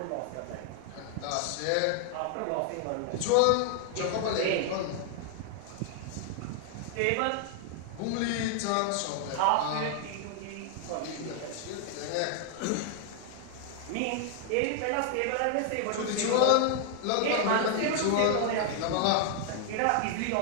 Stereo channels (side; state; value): both; different; correlation 0.00